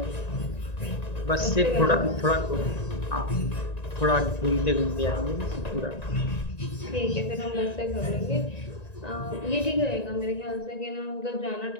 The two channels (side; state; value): right; late; 1.9 ms